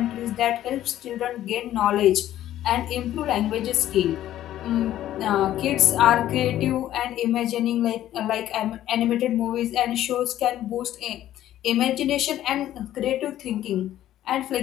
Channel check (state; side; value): quieter; right; 12.8 dB